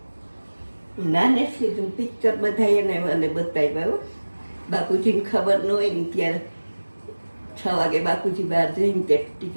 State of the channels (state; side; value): inverted; both; correlation -1.00